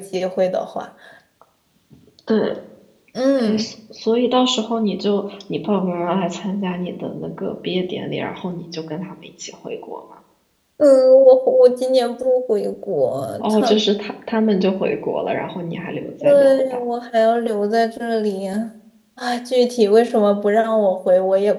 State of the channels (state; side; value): identical; both; correlation 1.00